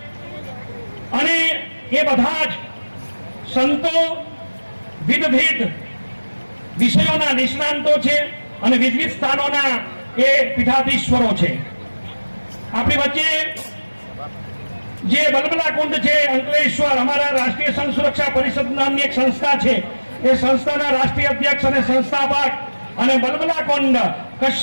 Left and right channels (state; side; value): inverted; both; correlation -1.00